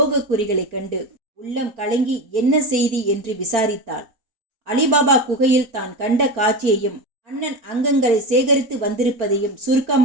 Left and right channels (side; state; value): left; late; 4.4 ms